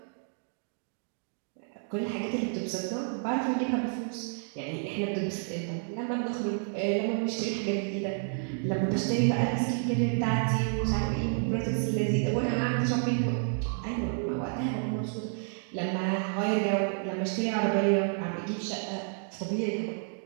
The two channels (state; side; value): silent; left; 58 dB below the other